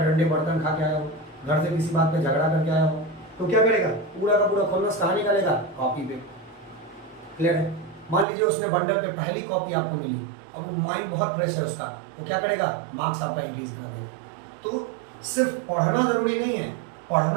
बर्तन खा के आया हो, घर से किसी बात पे झगड़ा करके आया हो, तो क्या करेगा, पूरा का पूरा खुन्नस कहाँ निकालेगा, कॉपी पे। क्लियर है। मान लीजिए उसने बंडल पे पहली कॉपी आपको मिली, अब माइंड बहुत फ्रेश है उसका, तो क्या करेगा, मार्क्स आपका इंक्रीज कर देगा। तो सिर्फ पढ़ना जरूरी नहीं है,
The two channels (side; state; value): left; drops out; at 8.2 s